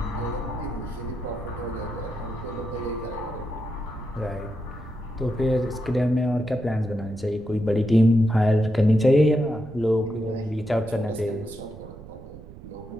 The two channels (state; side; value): noise; right; rumble, 16 dB below the sound